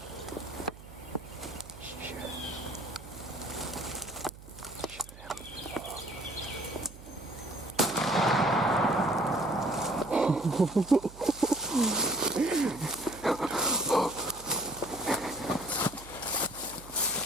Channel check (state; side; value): noise; right; hum, 18 dB below the sound